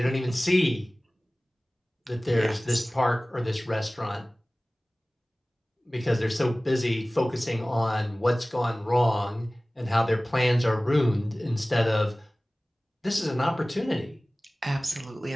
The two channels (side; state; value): both; normal; correlation 0.98